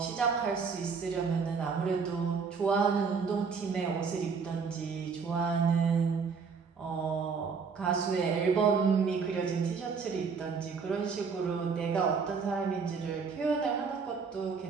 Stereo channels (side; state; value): left; quieter; 5.5 dB